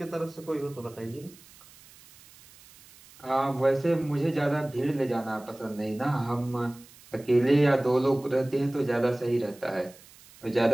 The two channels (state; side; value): noise; right; hiss, 24 dB below the sound